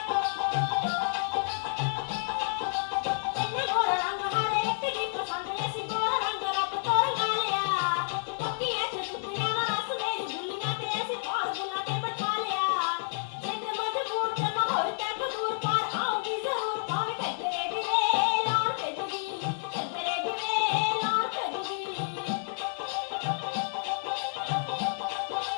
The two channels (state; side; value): silent; right; digital silence